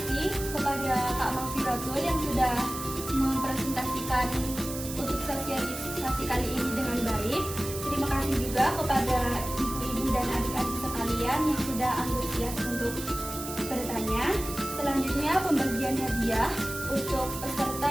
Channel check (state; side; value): noise; right; hiss, 9 dB below the sound